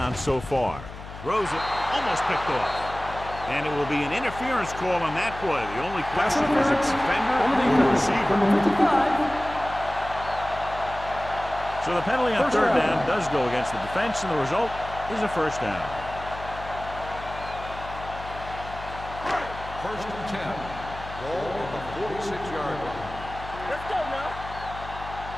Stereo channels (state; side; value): noise; left; hum, 13 dB below the sound